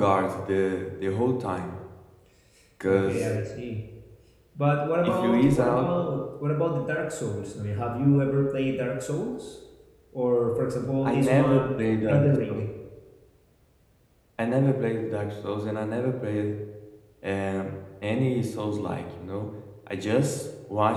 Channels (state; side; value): identical; both; correlation 1.00